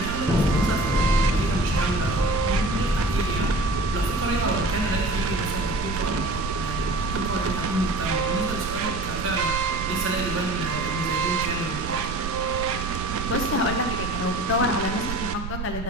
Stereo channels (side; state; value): right; noise; rumble, 7 dB below the sound